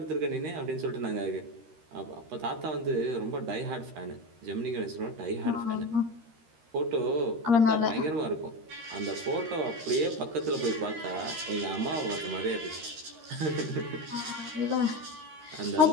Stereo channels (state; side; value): late; left; 13 ms